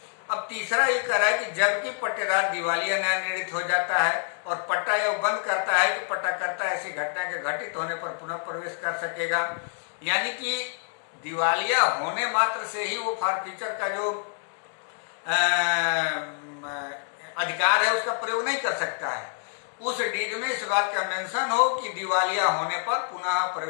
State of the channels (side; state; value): right; silent; 56 dB below the other